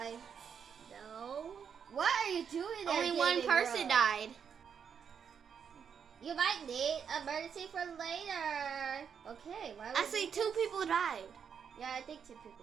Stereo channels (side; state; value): left; quieter; 7.2 dB